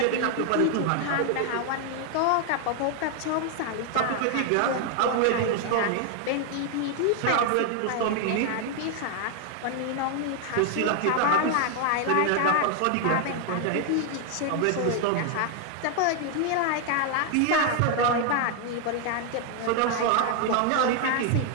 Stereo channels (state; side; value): different; both; correlation 0.00